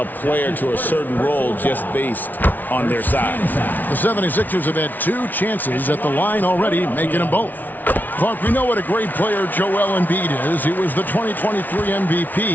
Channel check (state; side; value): late; right; 0.082 ms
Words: player to a certain role just based on their size. The 76ers have had 2 chances at the line already, making them both. Clark, we know what a great player Joel Embiid is. He was the 2023